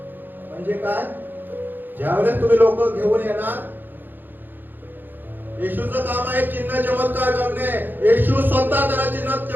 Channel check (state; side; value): late; left; 0.091 ms